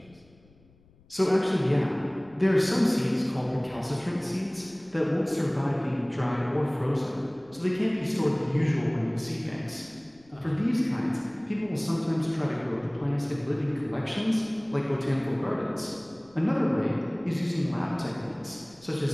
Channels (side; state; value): left; noise; rumble, 29 dB below the sound